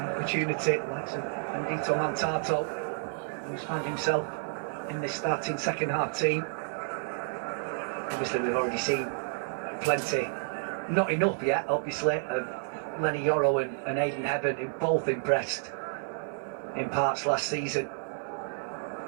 opportunity like Ndito Mantato, who's found himself in this starting second half team. Obviously we've already seen plenty, not enough yet obviously, of Lenny Yoro and Aidan Heaven, who both impressed in parts last season.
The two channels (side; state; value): left; silent; 58 dB below the other